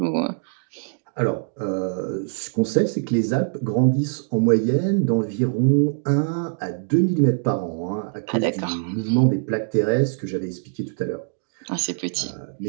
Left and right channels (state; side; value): silent; left; digital silence